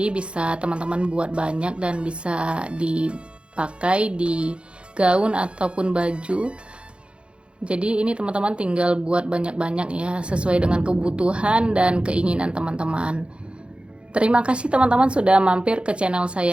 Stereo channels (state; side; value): late; left; 0.057 ms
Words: bisa teman-teman buat banyak dan bisa dipakai di gaun ataupun baju. Jadi ini teman-teman tinggal buat banyak-banyak ya, sesuai dengan kebutuhan dan keinginan teman-teman. Terima kasih teman-teman sudah mampir ke channel